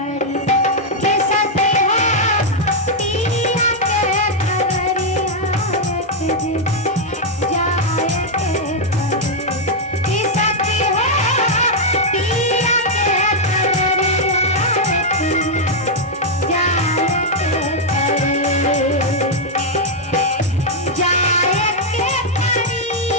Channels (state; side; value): normal; both; correlation -0.02